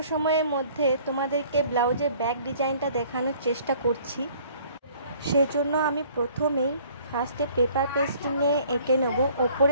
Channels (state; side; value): inverted; both; correlation -0.55